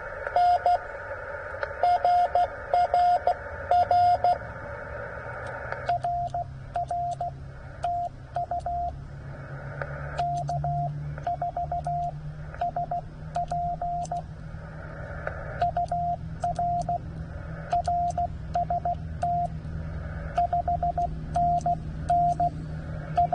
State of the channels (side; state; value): both; identical; correlation 1.00